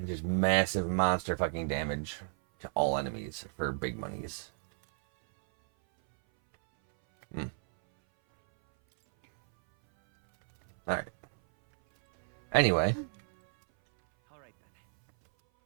just massive monster fucking damage to all enemies for big monies. Alright. Anyway. Alright then.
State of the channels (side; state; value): left; silent; 57 dB below the other